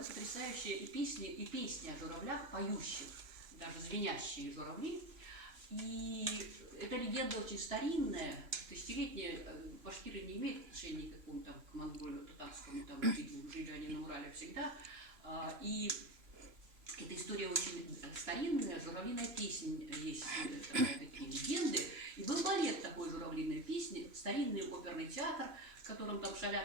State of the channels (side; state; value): left; late; 3.0 ms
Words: потрясающая, и песни о журавлях, поющих, даже звенящие журавли. И эта легенда очень старинная, тысячелетняя. Башкиры не имеют отношения никакому там к монголию, татарскому, там, жили они на Урале всегда. И эта история очень старинная, журавлиная песня, есть такие легенды. И был балет такой журавлиной песни, старинный оперный театр, в котором там